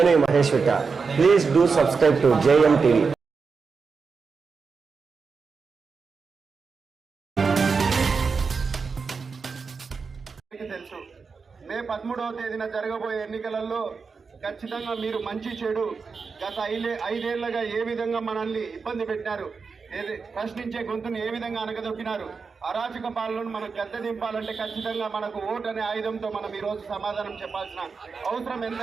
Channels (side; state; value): left; quieter; 5.0 dB